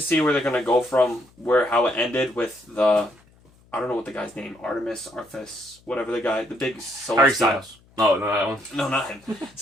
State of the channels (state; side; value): noise; left; hum, 30 dB below the sound